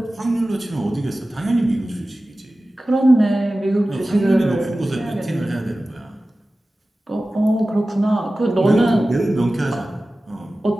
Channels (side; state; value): both; normal; correlation 0.96